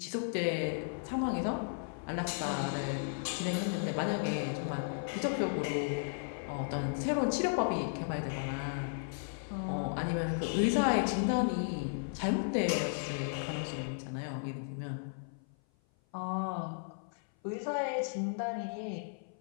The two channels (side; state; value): right; silent; 54 dB below the other